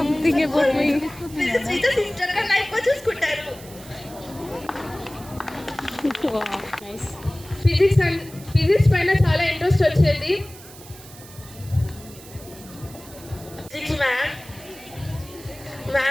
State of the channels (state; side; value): noise; right; hiss, 19 dB below the sound